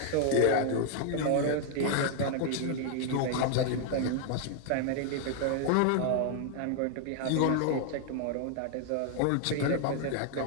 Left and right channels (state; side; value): different; both; correlation 0.00